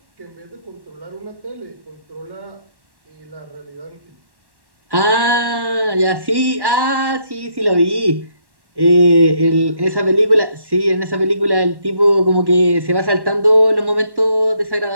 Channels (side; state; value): left; late; 1.1 ms